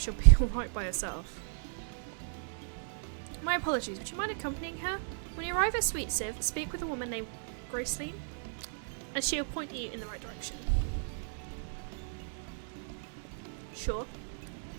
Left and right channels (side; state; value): left; silent; digital silence